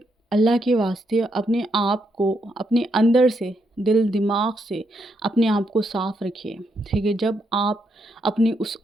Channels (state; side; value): normal; both; correlation 0.78